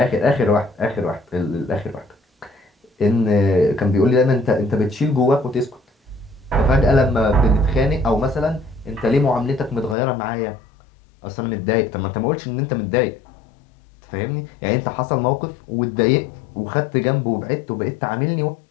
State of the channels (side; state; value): right; drops out; at 10.0 s